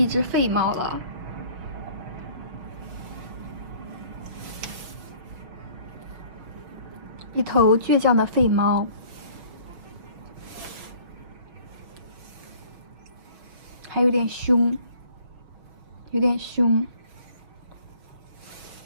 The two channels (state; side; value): late; left; 6.0 ms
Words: 一只废猫了。一头倔强的废猫，还有点凶，有点凶。